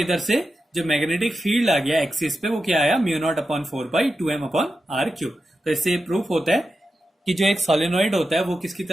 से जो मैग्नेटिक फील्ड आ गया एक्सिस पे वो क्या आया, mu naught upon 4 pi 2m upon r cube. तो इससे प्रूफ होता है कि जो एक सोलिनॉइड होता है वो किसकी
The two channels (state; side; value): normal; both; correlation 0.90